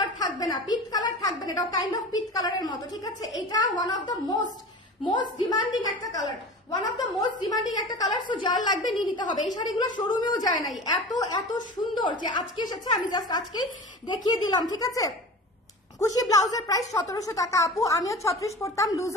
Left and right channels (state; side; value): normal; both; correlation 0.34